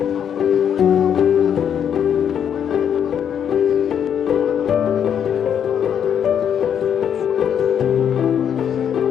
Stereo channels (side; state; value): right; quieter; 8.6 dB